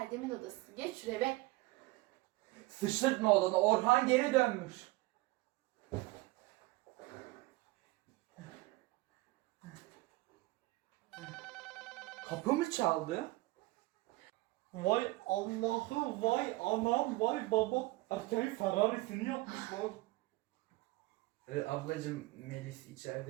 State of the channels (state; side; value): quieter; left; 21.0 dB